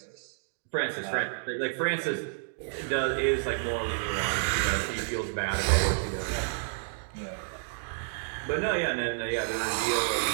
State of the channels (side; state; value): left; silent; digital silence